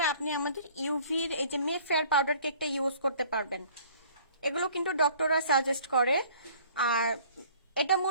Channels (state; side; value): inverted; both; correlation -0.53